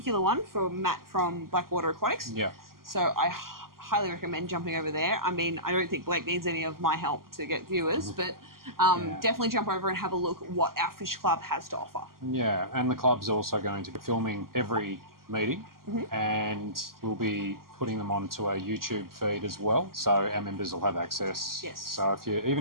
one for Matt from Blackwater Aquatics. Yeah. So I highly recommend jumping over there. I mean, I don't think Blake needs any of my help to get viewers, but definitely jump over and have a look at what our fish club has to offer. Yeah, and the club's also going to be filming every meeting, and we'll be putting them onto a YouTube feed as well, so our members will have access. Yes. So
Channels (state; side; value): late; left; 0.92 ms